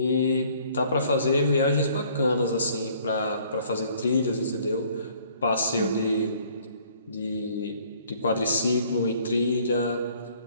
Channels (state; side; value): inverted; both; correlation -0.59